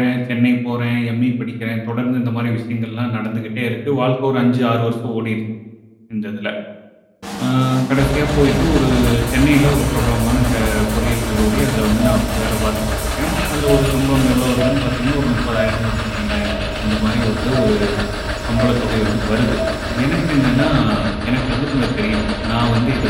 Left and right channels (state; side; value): identical; both; correlation 1.00